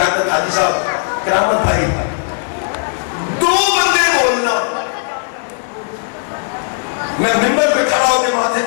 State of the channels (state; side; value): silent; right; 55 dB below the other